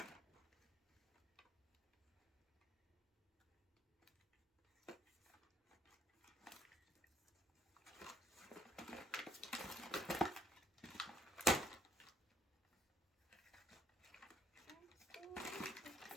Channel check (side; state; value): both; normal; correlation 0.67